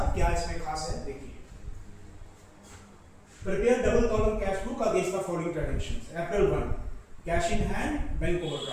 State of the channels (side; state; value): both; identical; correlation 1.00